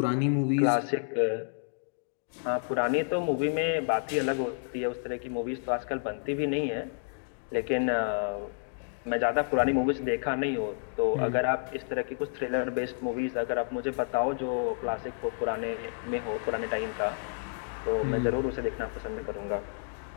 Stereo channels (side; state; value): right; silent; digital silence